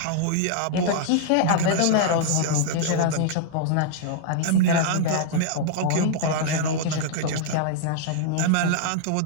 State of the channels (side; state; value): both; different; correlation -0.01